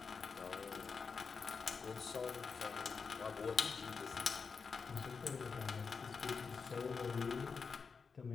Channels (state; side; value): quieter; right; 5.3 dB